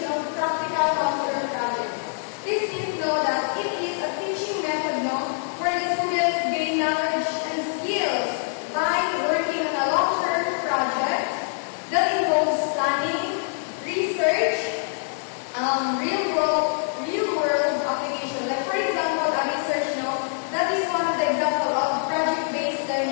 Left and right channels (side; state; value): right; silent; 62 dB below the other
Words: of practical long-term projects. This means that it is a teaching method where the students gain knowledge and skills by working on a long-term project that involves planning, research, real-world application. Like for example, a research that is one of the examples of project-based